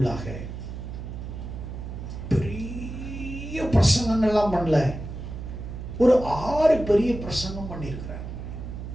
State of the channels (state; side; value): noise; right; hum, 8 dB below the sound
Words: பெரிய பிரசங்கங்கள்லாம் பண்ணல, ஒரு 6 பெரிய பிரசங்கம் பண்ணியிருக்கிறார்.